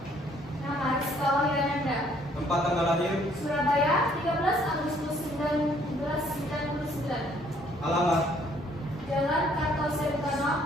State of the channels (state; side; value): normal; both; correlation 0.63